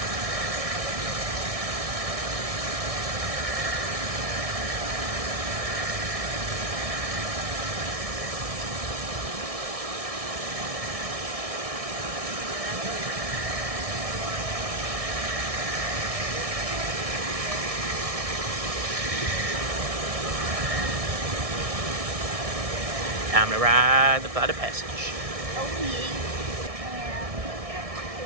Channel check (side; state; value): left; late; 1.6 ms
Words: Time to ride the flight of passage.